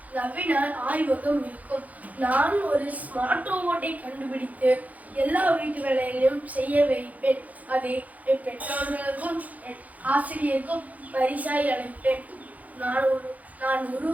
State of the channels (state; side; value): late; left; 0.076 ms